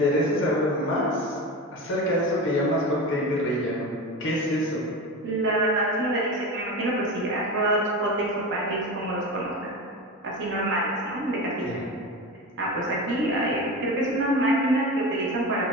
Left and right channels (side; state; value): both; normal; correlation 0.25